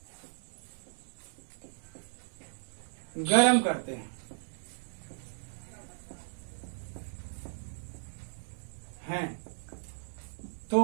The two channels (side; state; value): left; silent; digital silence